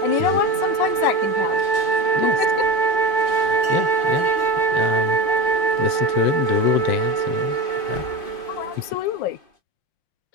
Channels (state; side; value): late; right; 5.6 ms